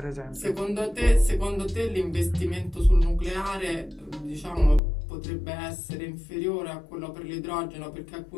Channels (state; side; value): drops out; right; at 4.8 s